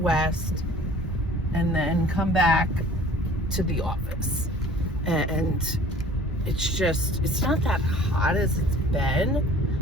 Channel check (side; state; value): both; normal; correlation 0.49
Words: and then come back to the office. And it's not that hot as it's